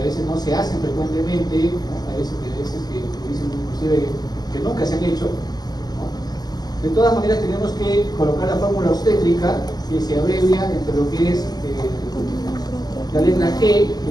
veces no se hacen frecuentemente, ¿no? Hay veces que dicen inclusive que nunca se han hecho, ¿no? De todas maneras tenemos que colocar la fórmula obstétrica que se abrevia entre lo que es la letra G,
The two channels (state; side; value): late; right; 0.20 ms